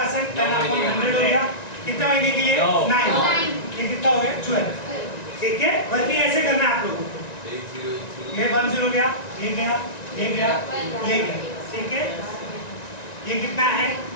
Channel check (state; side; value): late; right; 1.9 ms